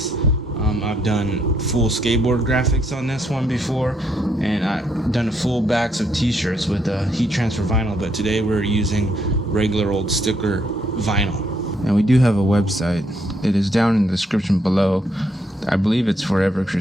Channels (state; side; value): normal; both; correlation 0.72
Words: I've done full skateboard graphics on this one before, and I've done full backs of t-shirts with heat transfer vinyl, but today we're using regular old sticker vinyl. And we do have a website. It is down in the description below. I believe it's